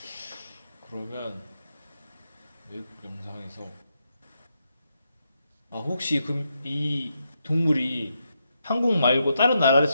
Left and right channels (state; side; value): inverted; both; correlation -0.82